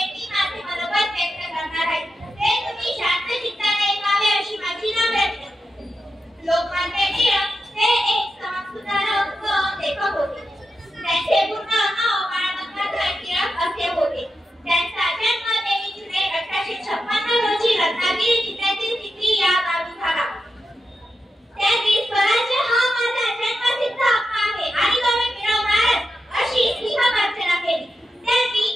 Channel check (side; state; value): both; normal; correlation 0.88